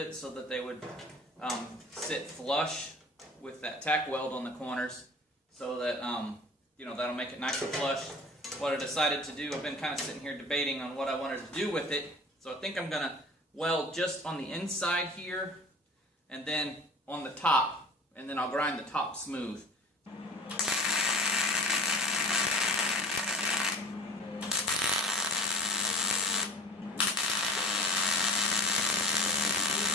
so that they would sit flush with that tack weld on the corners, so that you know, that'll make it nice and flush. What I decided to do, I've been kind of sitting here debating on what I wanted to do with it. So I think I'm gonna weld just on the inside here and then on the top, and then I'll grind the top smooth.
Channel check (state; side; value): normal; both; correlation 0.40